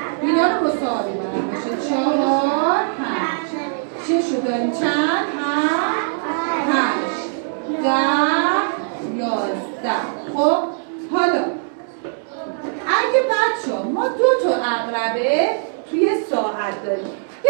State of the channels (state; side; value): silent; left; digital silence